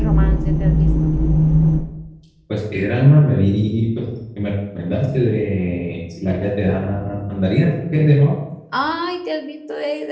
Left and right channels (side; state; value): both; identical; correlation 1.00